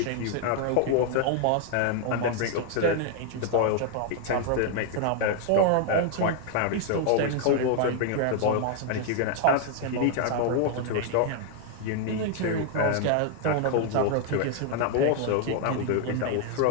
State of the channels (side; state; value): both; different; correlation 0.00